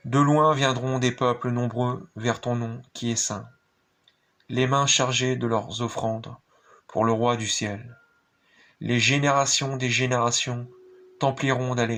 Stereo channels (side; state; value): both; identical; correlation 1.00